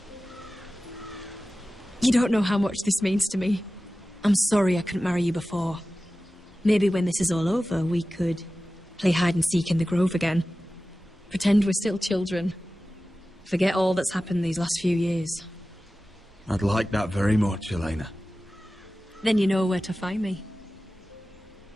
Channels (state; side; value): normal; both; correlation 0.95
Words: You don't know how much this means to me. I'm sorry I couldn't marry you before. Maybe when this is all over, we could play hide and seek in the grove again. Pretend we're still children. Forget all that's happened these last few years. I'd like that very much, Elena. Then you know where to find me.